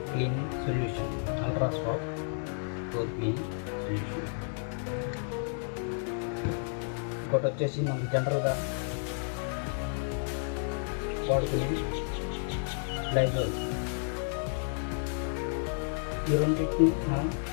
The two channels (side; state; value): right; silent; digital silence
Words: cleaning solution. Ultra swab floor cleaning solution. ఇంకోటి వచ్చేసి మనకు జనరల్గా వాడుకునే లైజాల్. ఈ రెండింటిని మనం